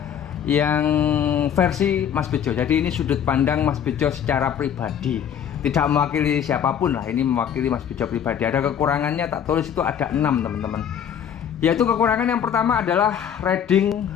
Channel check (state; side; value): quieter; right; 8.8 dB